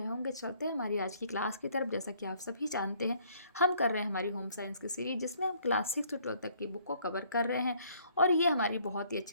होंगे। चलते हैं हमारी आज की क्लास की तरफ। जैसा कि आप सभी जानते हैं, हम कर रहे हैं हमारी होम साइंस की सीरीज, जिसमें हम क्लास 6 से 12 तक की बुक को कवर कर रहे हैं और ये हमारी बहुत ही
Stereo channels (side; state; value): both; inverted; correlation -0.63